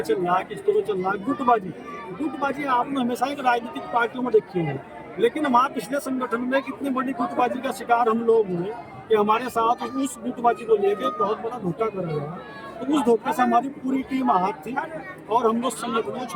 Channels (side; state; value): both; identical; correlation 1.00